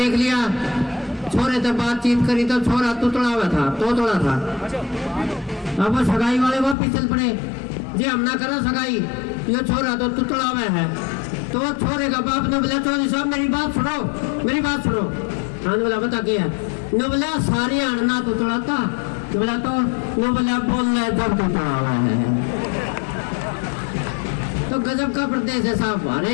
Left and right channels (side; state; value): right; drops out; at 6.8 s